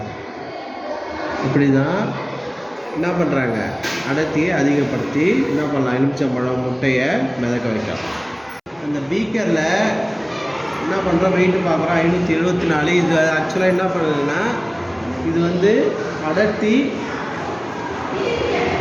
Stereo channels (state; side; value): identical; both; correlation 1.00